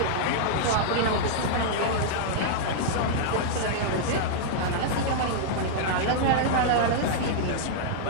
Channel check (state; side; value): different; both; correlation -0.01